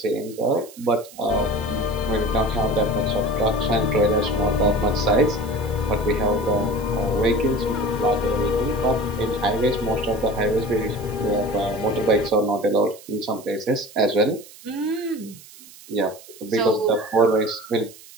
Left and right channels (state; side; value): noise; right; hiss, 20 dB below the sound